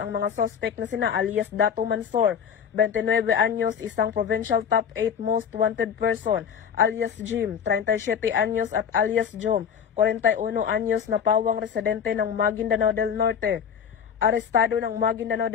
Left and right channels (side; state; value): right; quieter; 7.5 dB